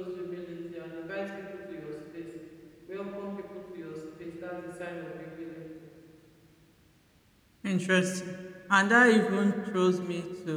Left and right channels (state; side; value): identical; both; correlation 1.00